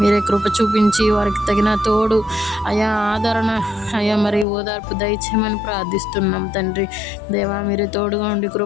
కృప చూపించి వారికి తగిన తోడు అయా ఆదరణ అయ్యా మరి ఓదార్పు దయచేయమని ప్రార్థిస్తున్నాం తండ్రి. దేవా మీరే తోడుగా ఉండి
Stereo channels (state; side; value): drops out; right; at 4.5 s